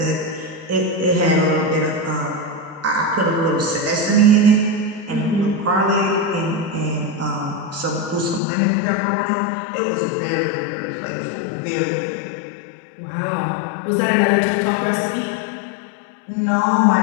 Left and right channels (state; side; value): drops out; right; at 8.4 s